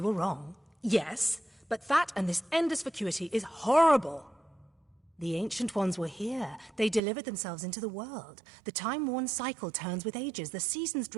were wrong. Yes, but that and this endless vacuity is horrible. The Ancient Ones were here. They delivered themselves into the world. The time-worn cycle turns with ages. The seasons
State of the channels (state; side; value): drops out; left; at 7.0 s